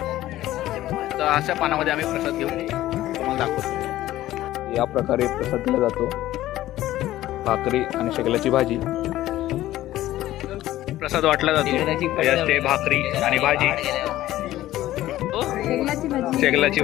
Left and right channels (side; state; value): right; quieter; 14.8 dB